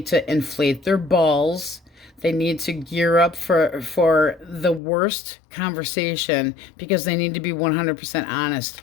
to inflate their balls. They need to gear up for the worst conversation, because they need to be 100% honest.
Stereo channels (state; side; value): drops out; right; at 4.8 s